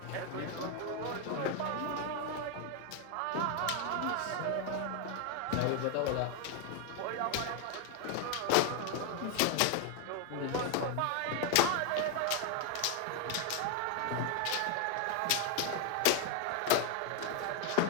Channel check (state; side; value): different; both; correlation 0.01